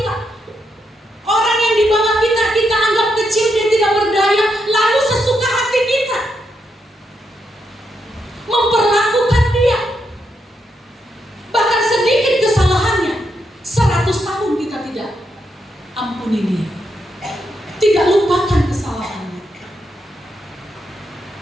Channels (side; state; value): both; normal; correlation 0.81